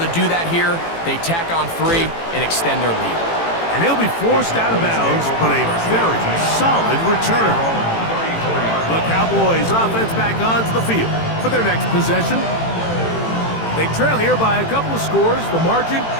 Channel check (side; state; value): right; late; 18 ms